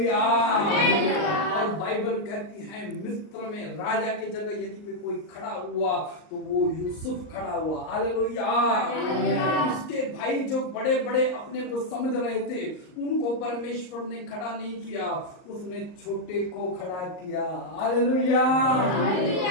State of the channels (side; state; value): right; late; 39 ms